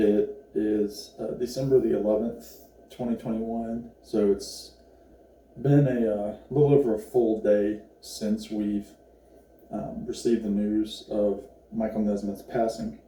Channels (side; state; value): both; identical; correlation 1.00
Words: is December the 11th, 2021, so it's been a little over a full day since we've received the news of Michael Nesmith's passing.